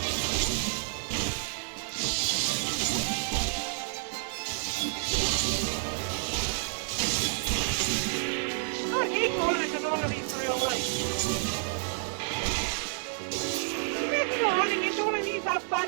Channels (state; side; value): silent; left; 58 dB below the other